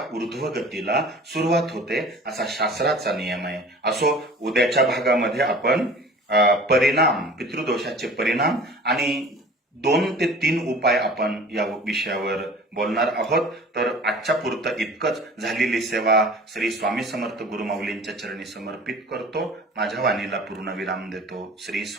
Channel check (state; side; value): normal; both; correlation 0.44